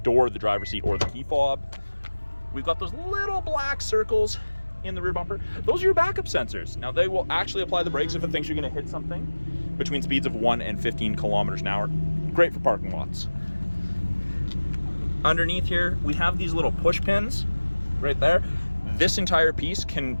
door, the driver's seat, or the key fob. We've got those little black circles in the rear bumper. Those are your backup sensors. Now they will actually apply the brakes if it thinks you're gonna hit something between speeds of 1 and 15 kilometers an hour. Great for parking lots. Underneath here, we have these little push pins right there. This entire piece can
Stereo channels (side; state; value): both; inverted; correlation -1.00